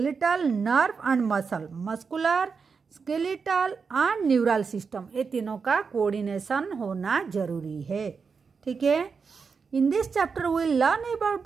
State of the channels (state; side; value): quieter; left; 5.4 dB